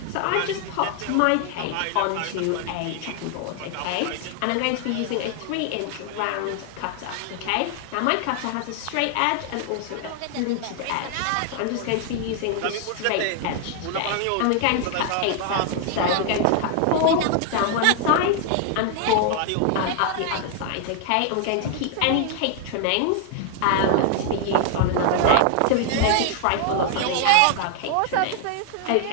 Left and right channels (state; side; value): different; both; correlation 0.00